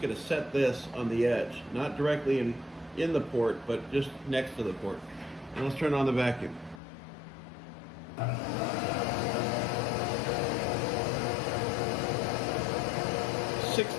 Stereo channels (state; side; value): drops out; right; at 6.8 s